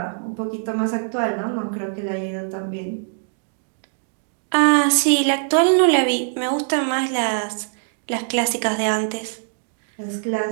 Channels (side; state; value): left; silent; digital silence